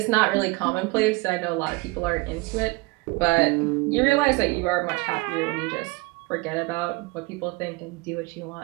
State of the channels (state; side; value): quieter; left; 25.0 dB